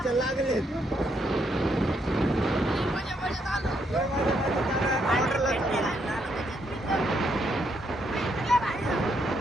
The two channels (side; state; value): both; normal; correlation 0.75